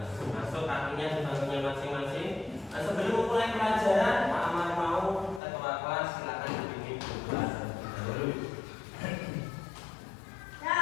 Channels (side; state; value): right; drops out; at 5.4 s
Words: Masuk kakinya di bangkunya masing-masing. Sebelum mulai pelajaran, Pak Amar mau ketua kelas silakan dibimbing pelajaran dulu.